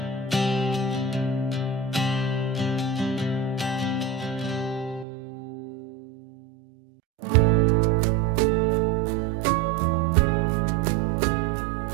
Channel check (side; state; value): left; drops out; at 5.1 s